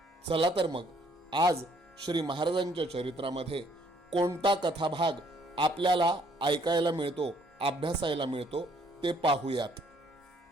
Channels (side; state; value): both; normal; correlation 0.64